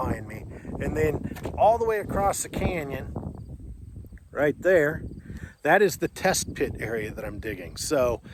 me. And then all the way across the canyon, right there, that is the test pit area that I'm digging. So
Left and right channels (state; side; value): identical; both; correlation 1.00